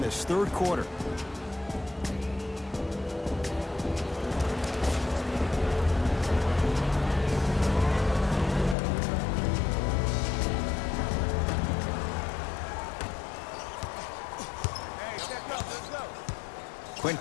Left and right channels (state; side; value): drops out; right; at 8.8 s